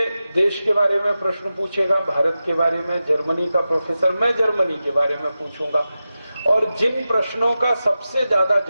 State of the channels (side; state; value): both; inverted; correlation -0.93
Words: देश के बारे में प्रश्न पूछेगा, भारत के बारे में, जर्मनी का प्रोफेसर, मैं जर्मनी के बारे में पूछूंगा। और जिन प्रश्नों का सबसे ज्यादा